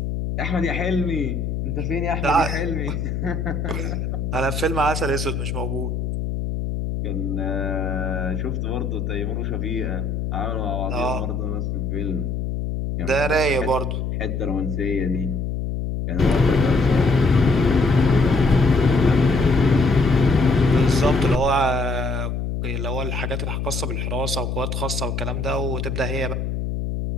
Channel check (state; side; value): noise; left; hum, 2 dB below the sound